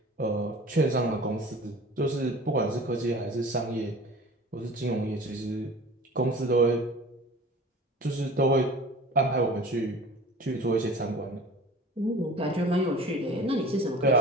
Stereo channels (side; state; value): both; normal; correlation 0.42